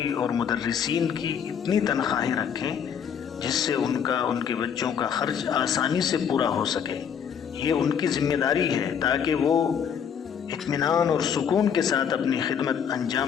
اور مدرسین کی اتنی تنخواہیں رکھیں جس سے ان کے بچوں کا خرچ آسانی سے پورا ہو سکے۔ یہ ان کی ذمہ داری ہے تاکہ وہ اطمینان اور سکون کے ساتھ اپنی خدمت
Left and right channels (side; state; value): right; quieter; 7.7 dB